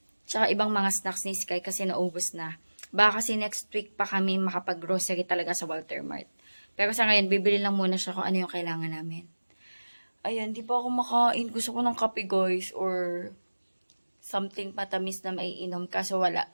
tsaka ibang mga snacks ni Sky kasi naubos na. Baka kasi next week pa kami makapag-grocery talaga sa Walter Mart. Pero sa ngayon, bibili lang muna siya kung ano yung kailangan namin. Ayan, di pa ako makain. Gusto ko ng kape, guys. Or something patamis na maiinom. Kaso wala.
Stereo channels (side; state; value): both; inverted; correlation -1.00